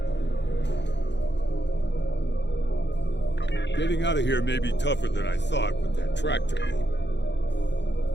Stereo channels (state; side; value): late; right; 0.52 ms